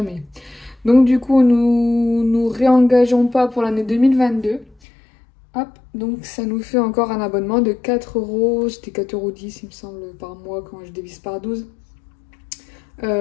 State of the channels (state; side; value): drops out; right; at 4.8 s